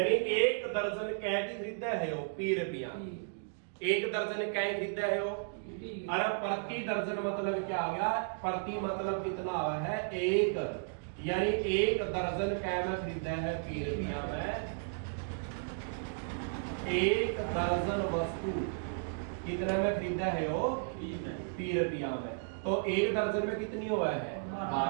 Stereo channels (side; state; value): left; silent; digital silence